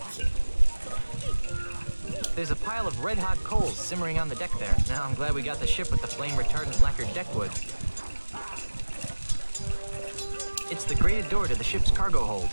There's a pile of red-hot coals simmering on the deck there. Now I'm glad we got the ship with the flame-retardant lacquered deckwood. It's the grated door to the ship's cargo hold.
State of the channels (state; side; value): inverted; both; correlation -1.00